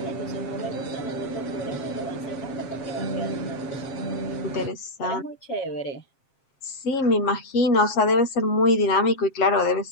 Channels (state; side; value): late; right; 7.5 ms